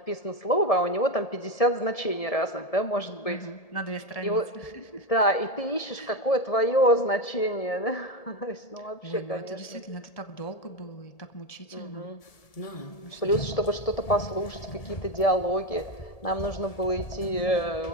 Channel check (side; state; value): right; late; 1.7 ms